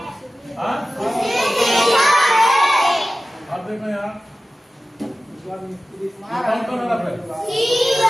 हाँ? अब देखो यहाँ कौन कौन हरफ है?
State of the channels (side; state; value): both; normal; correlation 0.96